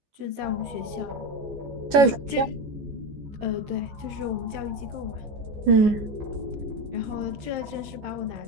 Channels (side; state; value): left; late; 14 ms